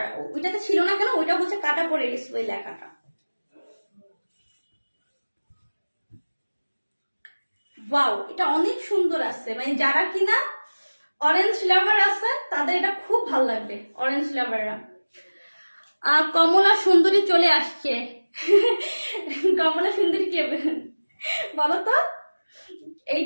ওইটাতে ছিল না কেন, ওইটা হচ্ছে কাটা পড়ে গেছে ওই লেখাটা। ওয়াও, এটা অনেক সুন্দর আছে, মানে যারা কিনা অরেঞ্জ লাভার আছে তাদের এটা খুব ভালো লাগবে, অরেঞ্জ লাভাররা। কমলা সুন্দরী চলে আসছে। কমলা সুন্দরী কে বলো তো?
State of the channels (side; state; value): both; inverted; correlation -1.00